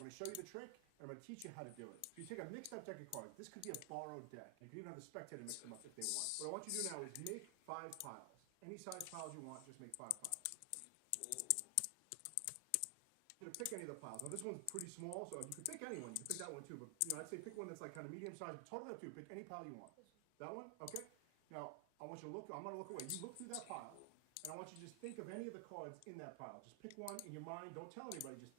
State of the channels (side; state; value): both; different; correlation 0.00